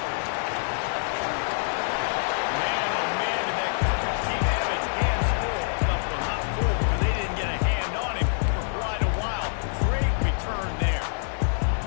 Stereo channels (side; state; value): right; silent; digital silence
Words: Man, oh man, did that coverage team have its hands full. Well, not full, because they didn't get a hand on him for quite a while. Great return there.